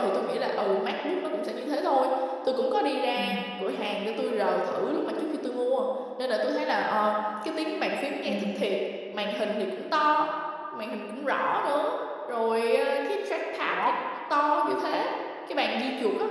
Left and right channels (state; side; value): identical; both; correlation 1.00